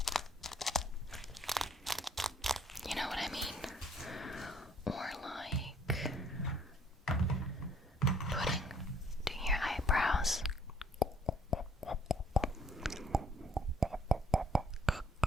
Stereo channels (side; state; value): both; normal; correlation 0.62